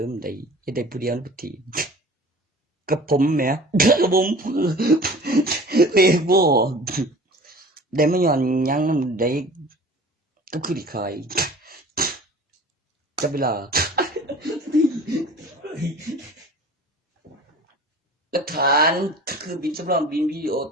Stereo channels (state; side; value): normal; both; correlation 0.43